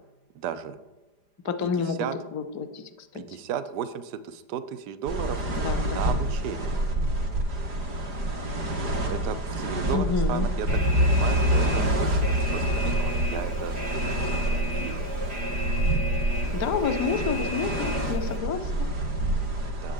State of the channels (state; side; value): late; left; 4.9 ms